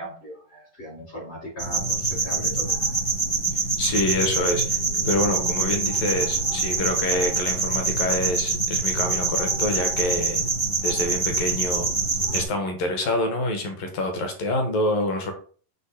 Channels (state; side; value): late; right; 11 ms